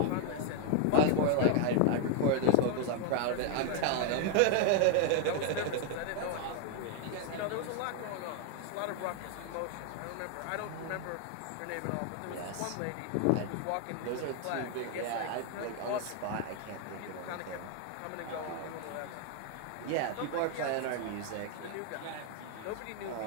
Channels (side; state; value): both; different; correlation 0.00